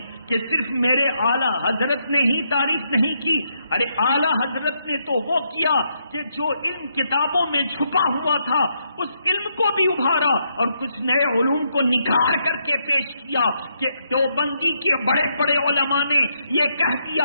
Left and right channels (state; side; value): inverted; both; correlation -0.78